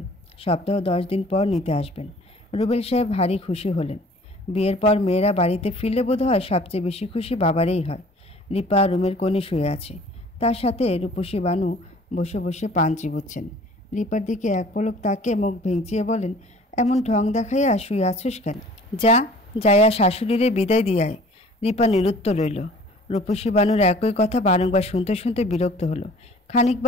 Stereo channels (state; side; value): normal; both; correlation 0.50